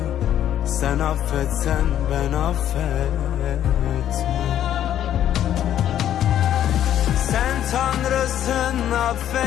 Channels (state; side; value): quieter; right; 11.0 dB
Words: sen affetsen ben affetmem. Sen Tanrısın,